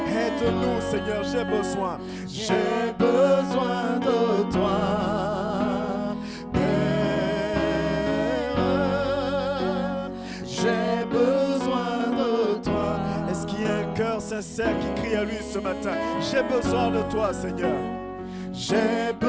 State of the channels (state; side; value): identical; both; correlation 1.00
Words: Aide-nous, Seigneur, j'ai besoin. J'ai besoin de toi. J'ai besoin de toi. Est-ce qu'il y a un cœur sincère qui crie à lui ce matin? J'ai besoin de toi, Seigneur. J'ai